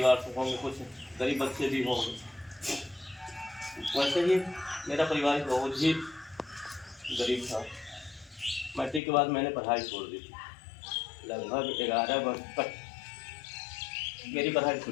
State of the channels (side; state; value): right; drops out; at 9.0 s